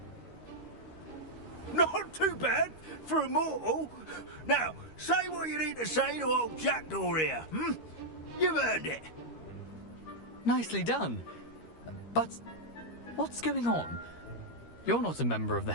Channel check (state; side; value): late; right; 13 ms